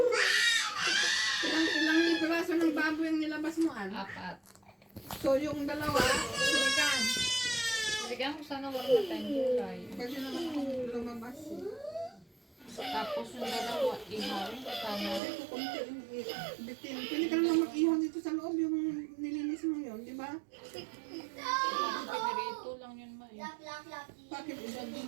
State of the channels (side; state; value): left; drops out; at 15.2 s